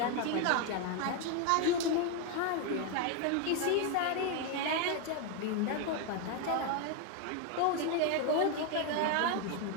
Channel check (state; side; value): different; both; correlation 0.01